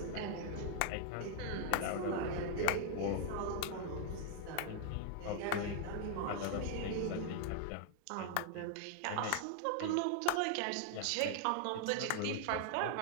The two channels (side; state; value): both; different; correlation 0.00